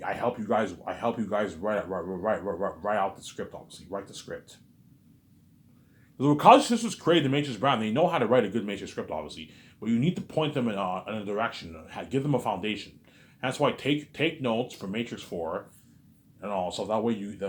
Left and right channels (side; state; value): both; identical; correlation 1.00